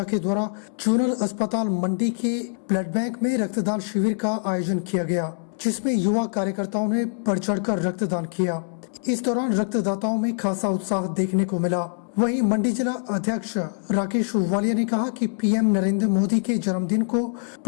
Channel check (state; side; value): silent; right; digital silence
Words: के द्वारा जोनल अस्पताल मंडी के ब्लड बैंक में रक्तदान शिविर का आयोजन किया गया, जिसमें युवा कार्यकर्ताओं ने बढ़ चढ़कर रक्तदान किया। इस दौरान रक्तदाताओं में खासा उत्साह देखने को मिला। वहीं मंडी जिला अध्यक्ष राकेश वालिया ने कहा कि पीएम नरेंद्र मोदी के जन्मदिन को